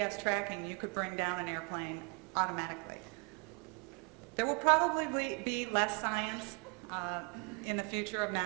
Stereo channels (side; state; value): left; quieter; 35.2 dB